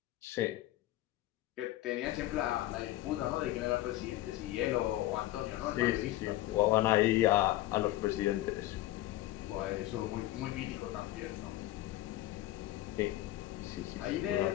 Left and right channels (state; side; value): quieter; right; 15.6 dB